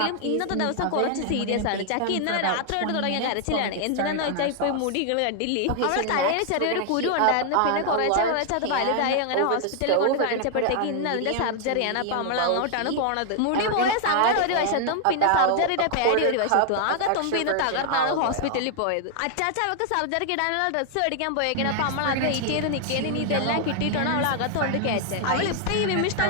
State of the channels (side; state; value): both; different; correlation 0.00